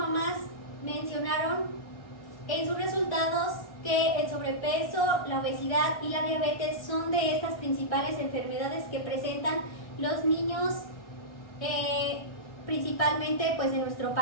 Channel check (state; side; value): late; right; 1.6 ms